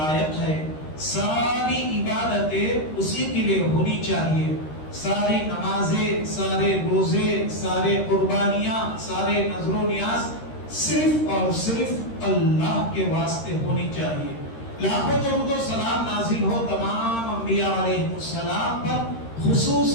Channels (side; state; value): right; late; 13 ms